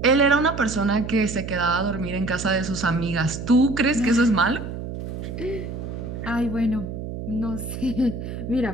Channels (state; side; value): noise; right; hum, 7 dB below the sound